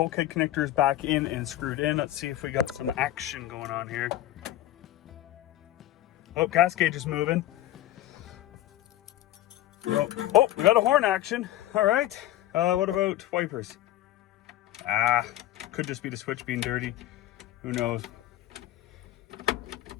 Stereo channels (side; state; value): right; quieter; 14.1 dB